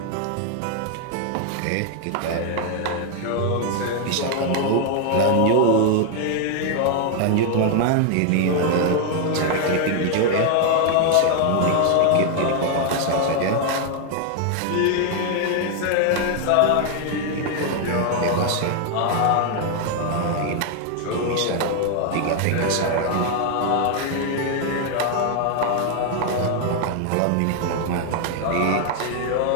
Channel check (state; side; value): different; both; correlation 0.00